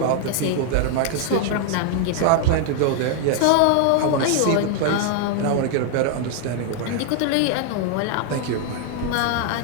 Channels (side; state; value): both; different; correlation 0.00